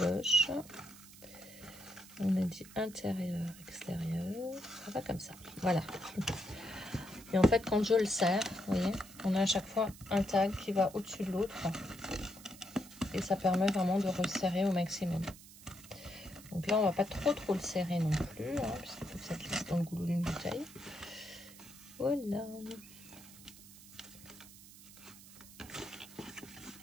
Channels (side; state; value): right; noise; hiss, 19 dB below the sound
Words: On a dit intérieur, extérieur, ça va comme ça, voilà. Et en fait, quand je le serre, vous voyez, on a à chaque fois un tag qui va au-dessus de l'autre. Et ça permet vraiment de resserrer au maximum. Donc là, on va pas trop le serrer non plus, hein, puisqu'il faut que ça glisse dans le goulot d'une bouteille. Voilà.